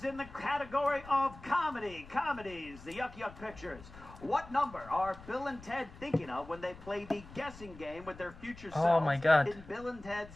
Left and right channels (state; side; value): noise; left; rumble, 18 dB below the sound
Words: in the category of comedy. Comedies, the Yuck Yuck Pictures. What number are Bill and Ted thinking of when they play the guessing game with their future selves Oh my God. in Bill and